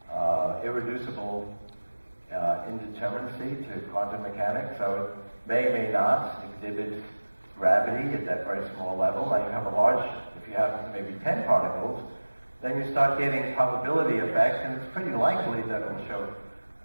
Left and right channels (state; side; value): inverted; both; correlation -1.00